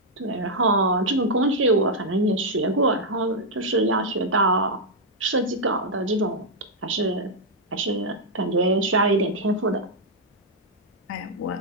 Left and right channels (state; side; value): normal; both; correlation -0.03